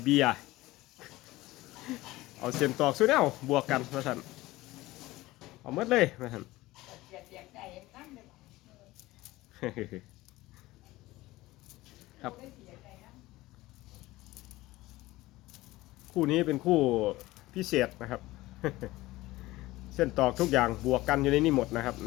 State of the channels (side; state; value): right; quieter; 18.5 dB